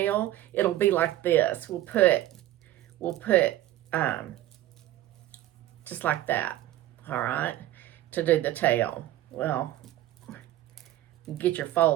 it'll be like this. We'll put we'll put just like that, all right, to do the tail. Well, get your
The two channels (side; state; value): left; quieter; 14.4 dB